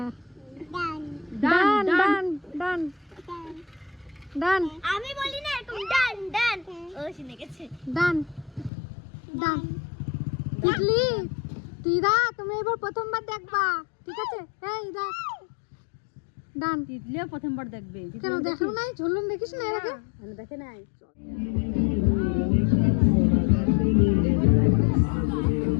ডান ডান ডান ডান ডান আমি বলি না এরকম ডান ডান, ও শুনে গেছে। ডান ডান। তিতলি, তিদা তুমি এবার প্রথমবার দেখবা, ঠিক আছে? এই দেখ, ডান। তিতলিও প্রথমবার দেখবে। কেন দেখো নাই? ঝুলন দেখিস না এর আগে? দেখে নাই।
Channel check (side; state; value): right; drops out; at 8.7 s